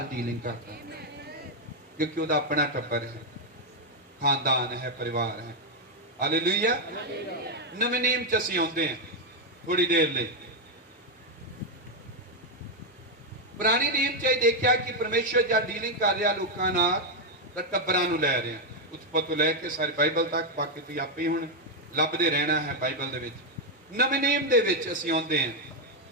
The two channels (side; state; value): both; normal; correlation 0.02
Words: डीलिंग करता है, क्योंकि उसका अपना टब्बर है, खानदान है, परिवार है। हालेलुया। नवे नियम च असीं आउंदे हैं थोड़ी देर लई। पुराने नियम च देखा कि परमेश्वर जब डीलिंग कर रहा लोगों नाल तां टब्बरां नूं लै रहा, उत्पत्ति तो लैके सारी बाइबल तक, बाकी तुसीं आपे ही हुण लभदे रहना है बाइबल दे विच। नवे नियम दे विच असीं आउंदे हैं।